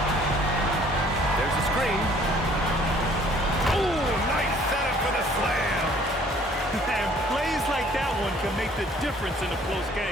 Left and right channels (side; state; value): both; normal; correlation 0.58